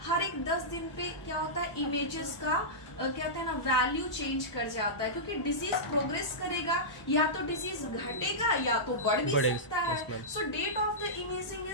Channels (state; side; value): late; right; 1.0 ms